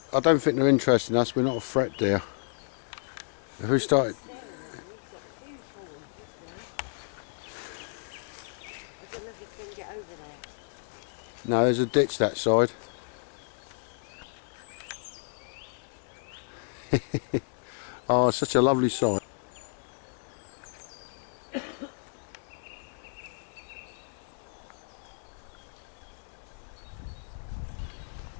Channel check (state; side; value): silent; right; digital silence